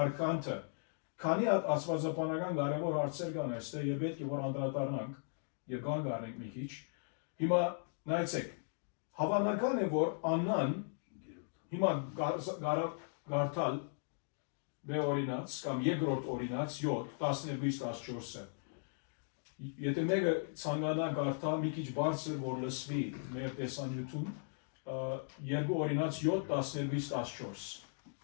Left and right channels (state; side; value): silent; right; digital silence